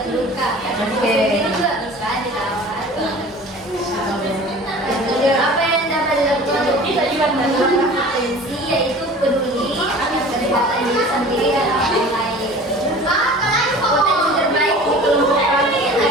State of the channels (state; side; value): normal; both; correlation 0.42